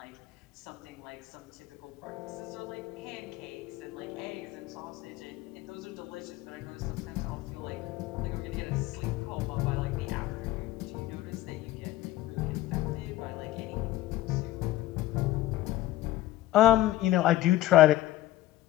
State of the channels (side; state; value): right; quieter; 15.5 dB